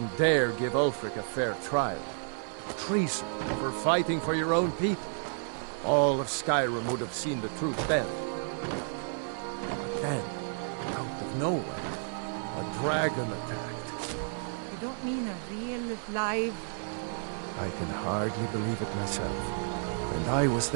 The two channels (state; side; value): silent; left; 57 dB below the other